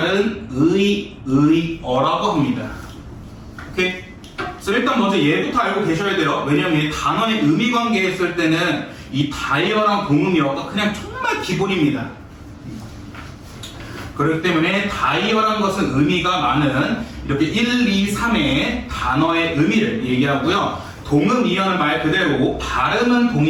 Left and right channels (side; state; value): both; identical; correlation 1.00